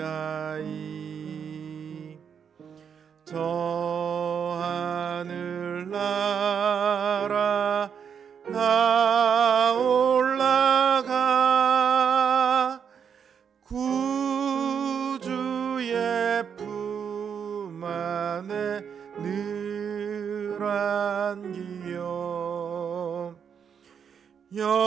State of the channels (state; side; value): quieter; left; 7.3 dB